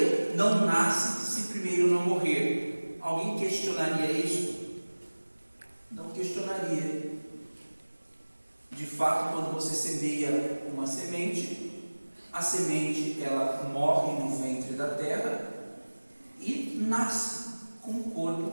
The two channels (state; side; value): inverted; both; correlation -1.00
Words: não nasce se primeiro não morrer. Alguém questionaria isso? Não questionaria. De fato, quando você semeia uma semente, a semente ela morre no ventre da terra e nasce com um